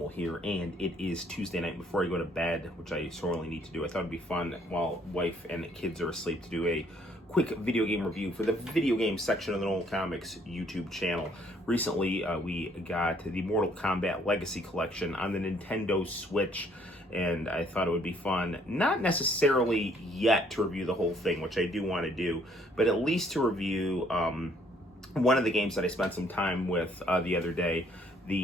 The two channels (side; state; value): both; normal; correlation 0.64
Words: here, and it is Tuesday night before I go to bed, which I sorely need to do. I thought it'd be fun while wife and kids are asleep to do a quick video game review for the video game section of the Noel Comics YouTube channel. Recently, we got the Mortal Kombat Legacy Collection on the Nintendo Switch, and I thought it would be fun, not necessarily yet to review the whole thing, which I do want to do, but at least to review one of the games that I spent some time with the other day,